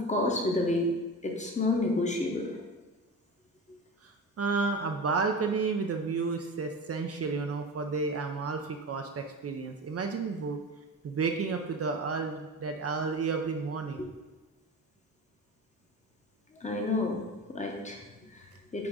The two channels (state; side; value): normal; both; correlation 0.30